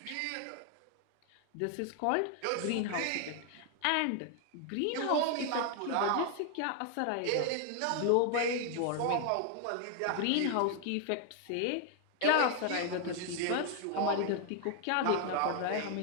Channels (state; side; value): different; both; correlation 0.00